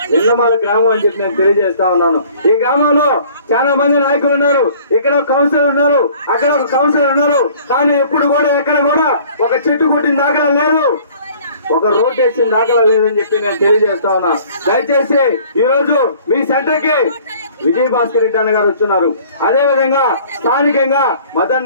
విన్నమాల గ్రామం అని చెప్పి నేను తెలియజేస్తా ఉన్నాను. ఈ గ్రామంలో చాలా మంది నాయకులు ఉన్నారు, ఇక్కడ ఒక కౌన్సిలర్ ఉన్నారు, అక్కడ ఒక కౌన్సిలర్ ఉన్నారు, కానీ ఎప్పుడు కూడా ఎక్కడ కూడా ఒక చెట్టు కొట్టిన దాఖలా లేదు, ఒక రోడ్ వేసిన దాఖలా లేదని చెప్పి నేను తెలియజేస్తా ఉన్నా. దయచేసి ఈ రోజు మీ సెంటర్ కి విజయ్ భాస్కర్ రెడ్డి అన్న గారు వచ్చున్నారు. అదే విధంగా స్థానికంగా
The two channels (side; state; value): both; inverted; correlation -0.52